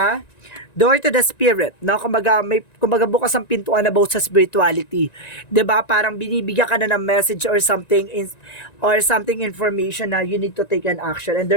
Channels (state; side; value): late; right; 1.9 ms